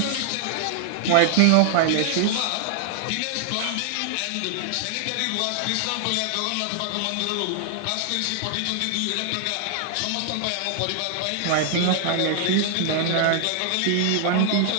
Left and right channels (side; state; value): both; different; correlation 0.00